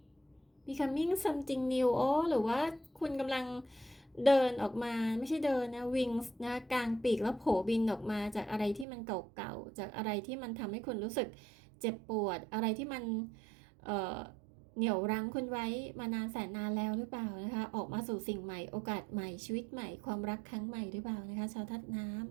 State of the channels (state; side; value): drops out; left; at 8.8 s